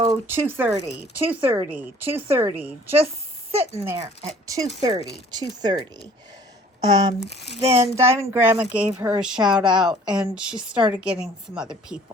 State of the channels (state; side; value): normal; both; correlation 0.53